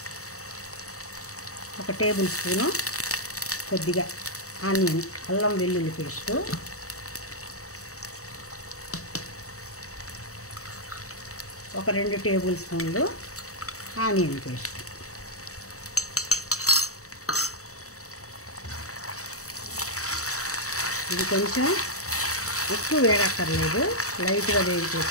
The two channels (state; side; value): late; right; 0.65 ms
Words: 1 టేబుల్ స్పూను కొద్దిగా ఆనియన్ అల్లం వెల్లుల్లి పేస్టు, ఒక 2 టేబుల్ స్పూన్లు ఆనియన్ పేస్ట్, ఇది కొంచెం ఎక్కువ వేడక్కర్లేదు, లైట్గా వేడితే